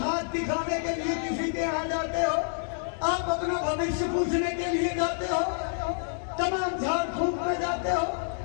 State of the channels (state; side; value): silent; right; digital silence